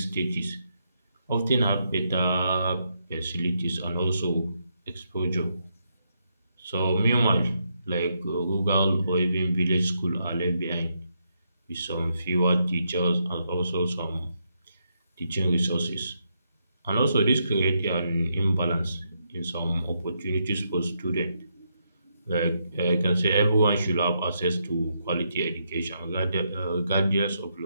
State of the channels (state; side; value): inverted; both; correlation -0.79